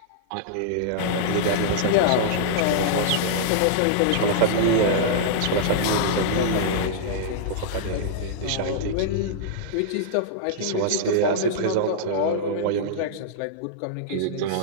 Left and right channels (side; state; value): both; different; correlation -0.02